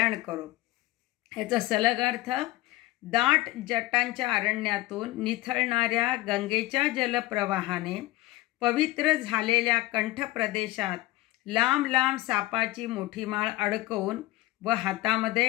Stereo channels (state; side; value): quieter; right; 18.3 dB